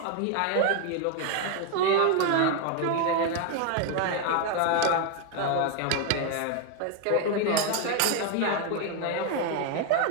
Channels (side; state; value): both; different; correlation 0.01